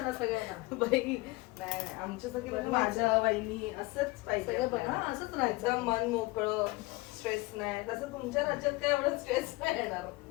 सगळ्यांना. बाई नाही, आमच्यासाठी म्हणजे माझ्या वहिनी असंच पाहिजे. सगळं बघ, हा, असंच राहायचं. एकदम मन मोकळं, स्ट्रेस नाही. तसं तुमच्या राज्यात काय एवढं स्ट्रेस नाही येणार.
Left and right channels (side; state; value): right; quieter; 22.0 dB